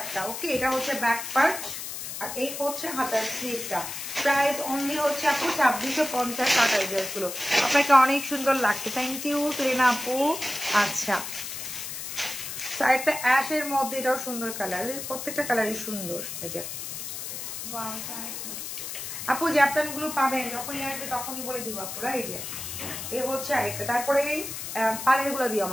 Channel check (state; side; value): noise; left; hiss, 7 dB below the sound